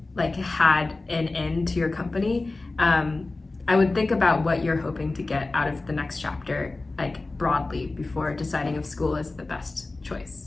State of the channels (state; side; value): quieter; right; 3.3 dB